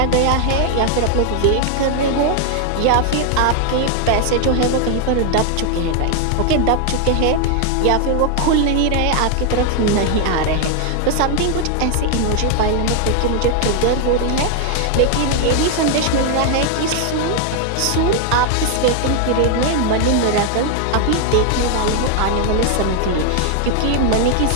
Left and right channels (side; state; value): both; different; correlation 0.00